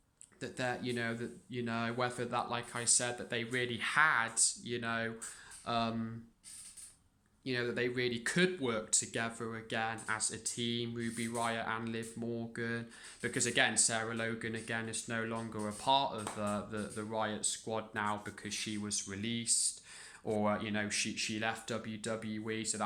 whether that, like I said, that they really had, that they really could work together again as a team, Ruby Riott and Liv Morgan, because again, Sarah Logan again is no longer a part of the Riott squad now because she was released, or she left WWE, so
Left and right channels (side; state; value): both; identical; correlation 1.00